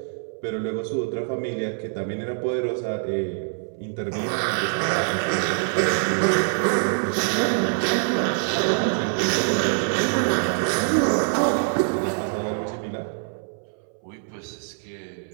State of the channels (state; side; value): silent; left; 61 dB below the other